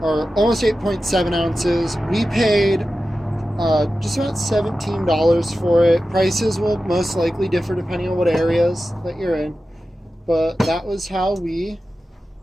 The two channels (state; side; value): normal; both; correlation 0.93